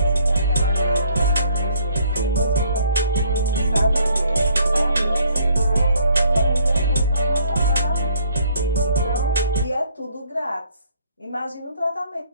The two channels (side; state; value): both; inverted; correlation -0.64